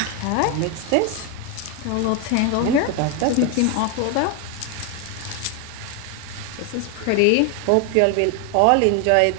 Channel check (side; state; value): both; different; correlation 0.01